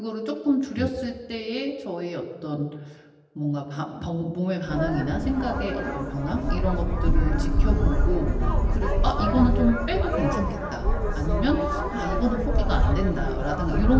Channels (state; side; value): identical; both; correlation 1.00